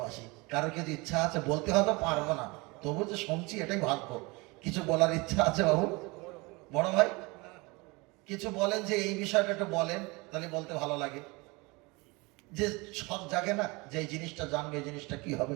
কারোর কিছু ইচ্ছা আছে বলতে, হয়তো পারবো না, তবু যে শুনছি এটাই ভাগ্য। কিছু বলার ইচ্ছা আছে বাবু? বড় ভাই কিছু বলেন, যে এই বিষয়টা একটু বলেন, তাহলে বলতে ভালো লাগে। যে সব জাগে না, যে এই জিনিসটা জানবে, এই জিনিসটা কি হবে।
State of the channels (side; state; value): left; quieter; 25.7 dB